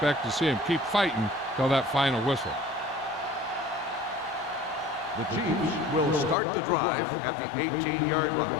to see them keep fighting till that final whistle. The Chiefs will start the drive at the 18-yard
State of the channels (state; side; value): drops out; right; at 6.4 s